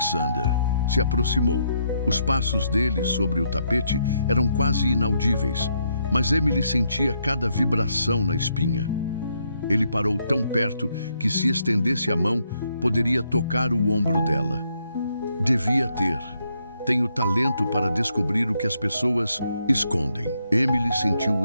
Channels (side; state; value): both; inverted; correlation -0.76